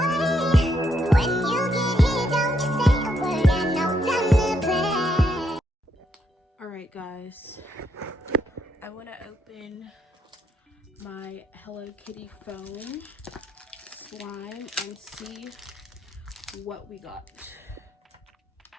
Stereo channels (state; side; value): normal; both; correlation 0.76